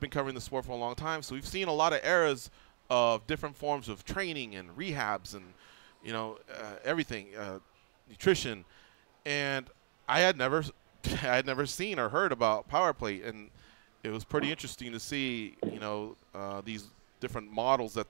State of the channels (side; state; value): left; silent; digital silence